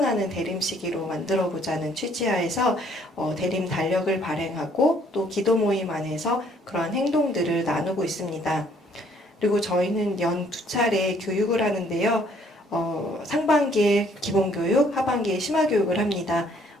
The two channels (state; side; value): normal; both; correlation 0.63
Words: 대림시기로 만들어 보자는 취지하에서 대림 달력을 발행하고 또 기도 모임 안에서 그러한 행동들을 나누고 있습니다. 그리고 저희는 연 2차례 교육을 하는데요. 상반기에 기본교육, 하반기에 심화교육을 합니다.